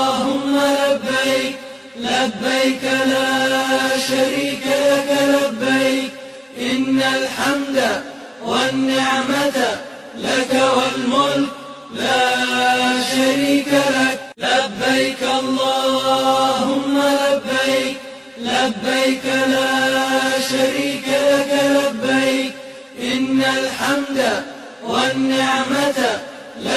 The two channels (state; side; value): identical; both; correlation 1.00